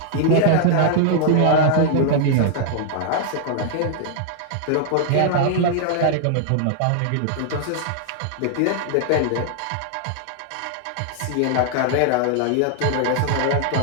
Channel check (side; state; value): both; different; correlation -0.01